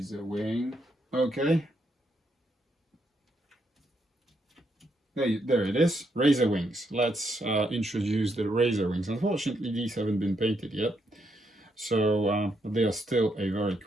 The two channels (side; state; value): both; normal; correlation 0.77